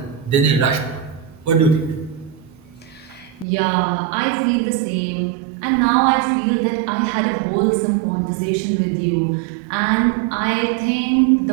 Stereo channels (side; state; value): left; drops out; at 3.5 s